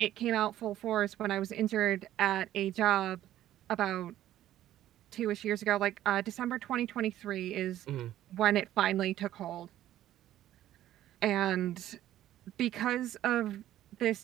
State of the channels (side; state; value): left; quieter; 13.0 dB